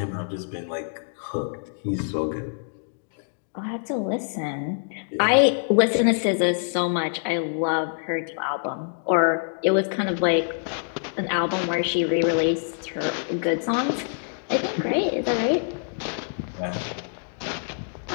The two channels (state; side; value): silent; right; digital silence